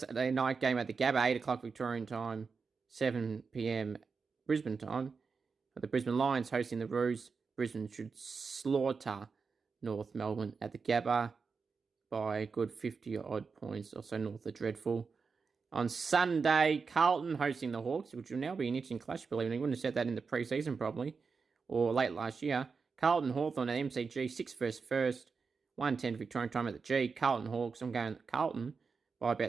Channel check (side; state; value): left; quieter; 5.0 dB